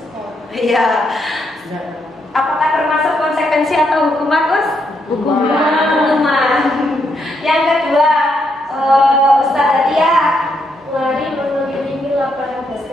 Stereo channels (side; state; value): both; normal; correlation 0.78